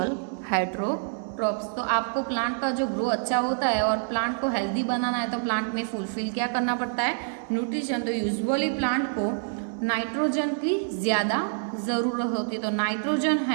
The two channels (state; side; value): silent; left; digital silence